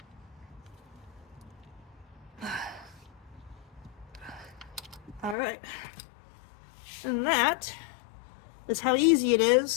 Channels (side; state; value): right; drops out; at 5.4 s